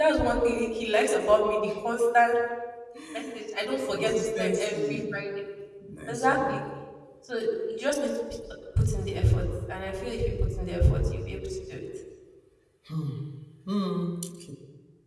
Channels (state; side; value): identical; both; correlation 1.00